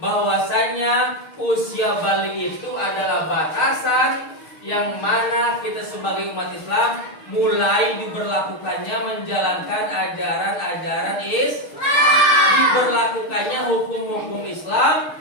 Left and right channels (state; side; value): late; right; 6.5 ms